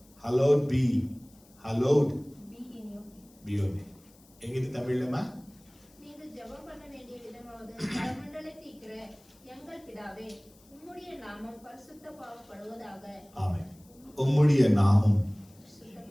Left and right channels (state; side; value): noise; left; hiss, 28 dB below the sound